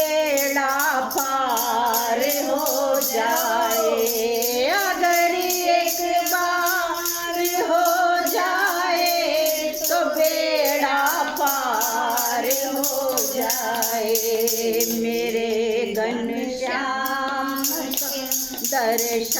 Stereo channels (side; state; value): both; identical; correlation 1.00